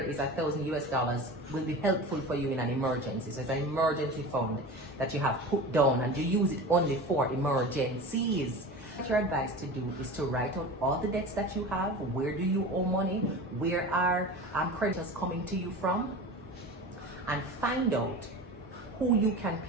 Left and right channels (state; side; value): normal; both; correlation 0.32